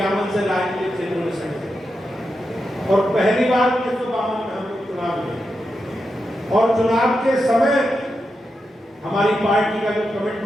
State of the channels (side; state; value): both; normal; correlation 0.87